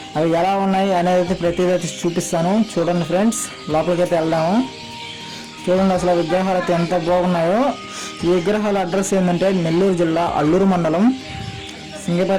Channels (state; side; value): identical; both; correlation 1.00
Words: అవి ఎలా ఉన్నాయి అనేది అయితే ప్రతిదీ అయితే చూపిస్తాను. చూడండి ఫ్రెండ్స్, లోపలికి అయితే వెళ్దాము. చూడండి అసలు విగ్రహాలు అయితే ఎంత బాగున్నాయో. ఈ విగ్రహాల అడ్రస్ ఏంటంటే నెల్లూరు జిల్లా అల్లూరు మండలం